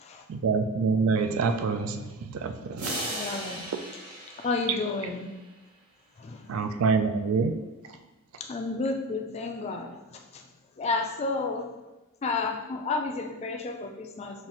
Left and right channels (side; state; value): both; normal; correlation 0.25